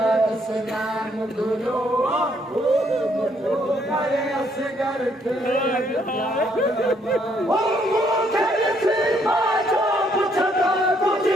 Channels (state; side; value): normal; both; correlation 0.70